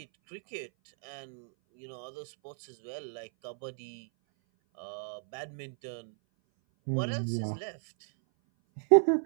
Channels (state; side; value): silent; left; 56 dB below the other